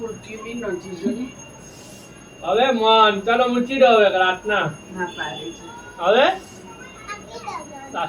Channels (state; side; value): identical; both; correlation 1.00